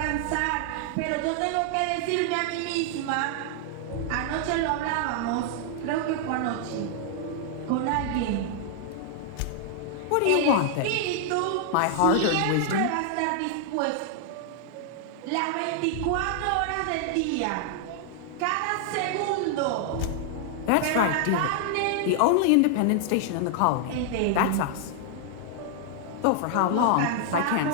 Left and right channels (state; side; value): different; both; correlation 0.00